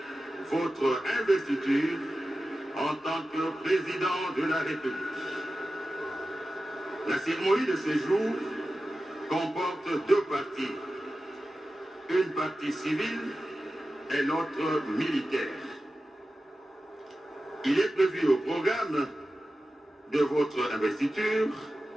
votre investiture en tant que président de la République. La cérémonie de ce jour comporte deux parties, une partie civile et l'autre militaire. Il est prévu au programme de votre investiture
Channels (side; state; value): both; normal; correlation 0.94